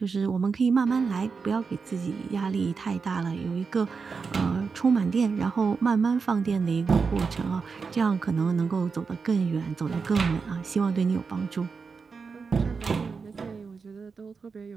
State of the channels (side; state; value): left; quieter; 5.1 dB